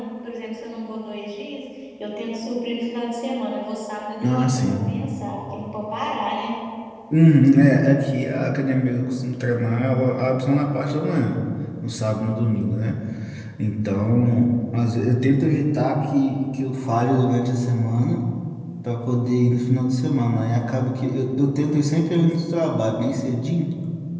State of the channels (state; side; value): identical; both; correlation 1.00